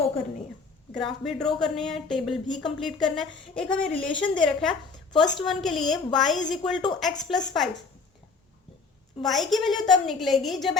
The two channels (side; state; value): right; quieter; 4.6 dB